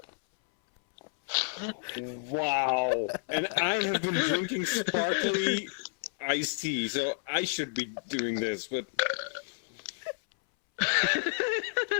Wow. And I have been drinking sparkly iced tea, so I should be doing this, but...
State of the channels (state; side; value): silent; right; 58 dB below the other